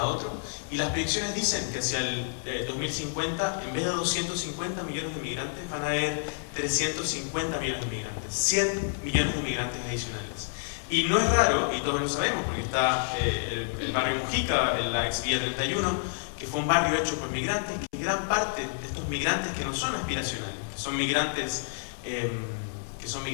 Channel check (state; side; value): silent; right; 59 dB below the other